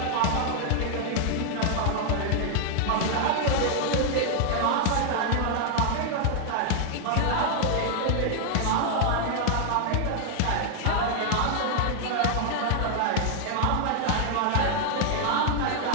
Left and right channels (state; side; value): different; both; correlation 0.00